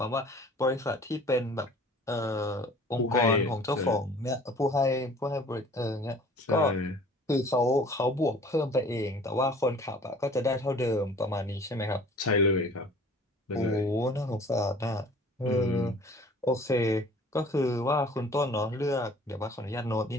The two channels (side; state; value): both; normal; correlation 0.49